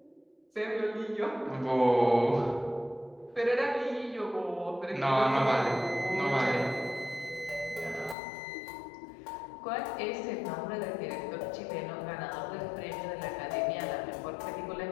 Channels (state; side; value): drops out; right; at 8.2 s